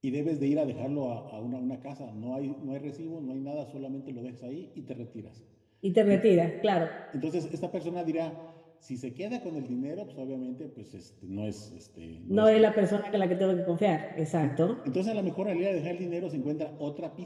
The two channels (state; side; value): identical; both; correlation 1.00